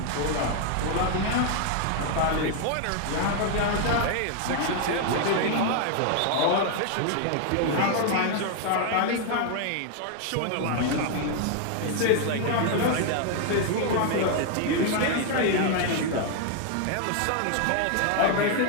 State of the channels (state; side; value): different; both; correlation 0.00